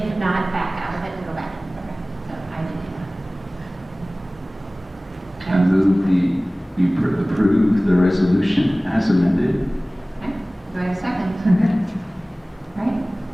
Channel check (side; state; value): both; normal; correlation 0.98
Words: not, back out of it and go back. Okay. So I did I move we approve the resolution as amended. Okay. Do I have a second? All right.